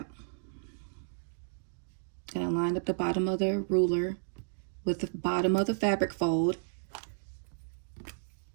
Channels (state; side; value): silent; left; digital silence